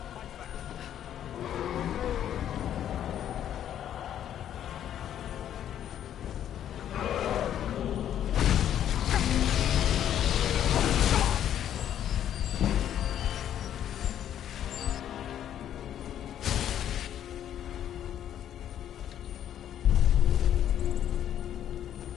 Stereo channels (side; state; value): right; quieter; 10.5 dB